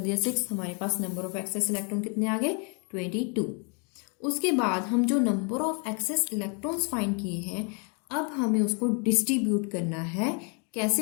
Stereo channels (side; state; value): right; quieter; 36.9 dB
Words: दिया 6, हमारे पास नंबर ऑफ एक्सेस इलेक्ट्रॉन कितने आ गए, 22। उसके बाद हम जो number of excess electrons find किए हैं, अब हमें उसको डिस्ट्रीब्यूट करना है।